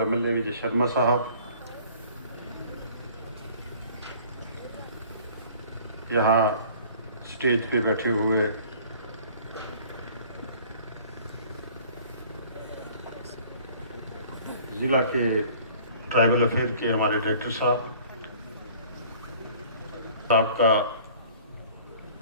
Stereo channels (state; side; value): inverted; both; correlation -0.51